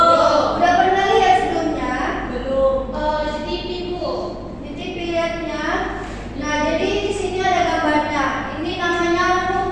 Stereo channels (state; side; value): identical; both; correlation 1.00